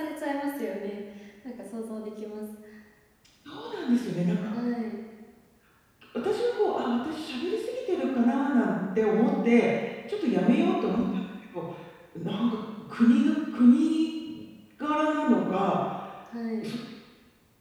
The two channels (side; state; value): both; identical; correlation 1.00